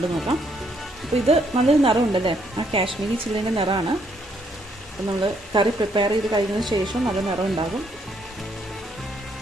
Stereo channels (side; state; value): both; normal; correlation 0.71